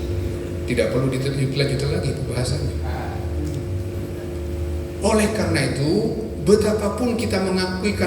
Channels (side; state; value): both; identical; correlation 1.00